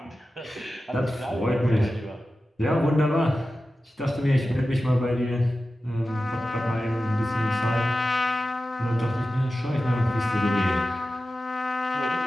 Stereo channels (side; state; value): both; normal; correlation 0.93